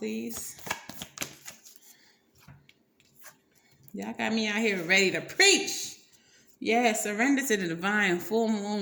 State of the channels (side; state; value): both; identical; correlation 1.00